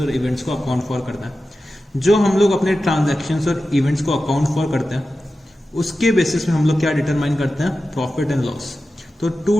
इवेंट्स को अकाउंट फॉर करना है। जो हम लोग अपने ट्रांजैक्शंस और इवेंट्स को अकाउंट फॉर करते हैं उसके बेसिस में हम लोग क्या डिटरमाइन करते हैं, प्रॉफिट एंड लॉस। तो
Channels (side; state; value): both; normal; correlation 0.93